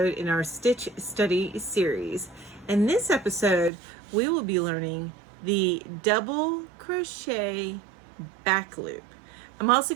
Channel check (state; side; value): drops out; left; at 3.7 s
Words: in our Stitch Study series. In this episode, we will be learning the double crochet back loop. I'm also